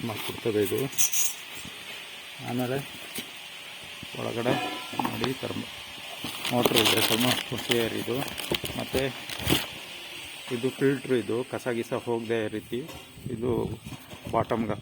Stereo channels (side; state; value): both; identical; correlation 1.00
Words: ಮಾಡಿಕೊಡ್ತದೆ ಇದು. ಆಮೇಲೆ ಒಳಗಡೆ ನೋಡಿ ಮೋಟ್ರ್ ಇದೆ, ಥರ್ಮೋಸ್ಟೇಟ್ ಇದು. ಮತ್ತು ಇದು ಫಿಲ್ಟ್ರ್. ಇದು ಕಸ ಗಿಸ ಹೋಗದೆ ರೀತಿ ಇದು ಬಾಟಮ್ಗೆ